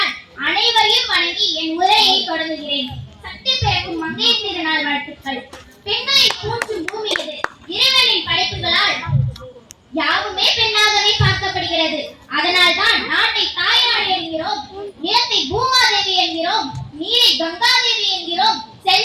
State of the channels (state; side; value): identical; both; correlation 1.00